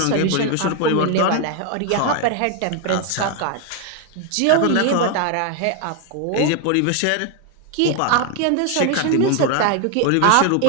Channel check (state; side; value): different; both; correlation 0.01